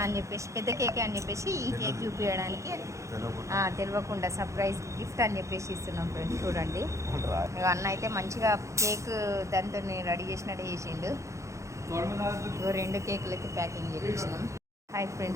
అని చెప్పేసి, పెద్ద కేకే అని చెప్పేసి ఈ కేక్ చూపించడానికి తెలియకుండా సర్ప్రైజ్ గిఫ్ట్ అని చెప్పేసి ఇస్తున్నాం ఫ్రెండ్స్. చూడండి, అన్న అయితే మంచిగా కేక్ దాంతో రెడీ చేసినట్టు చేసిండు. ఇగో 2 కేకులు అయితే ప్యాకింగ్ చేయించినాం. హాయ్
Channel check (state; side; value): late; left; 0.15 ms